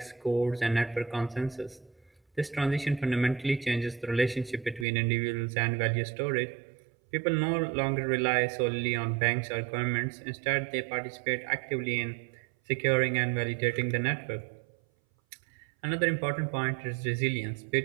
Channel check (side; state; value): left; drops out; at 4.9 s